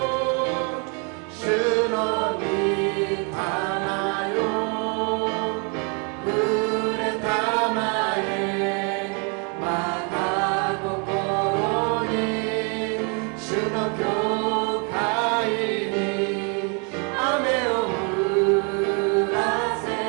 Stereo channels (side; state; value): left; quieter; 35.9 dB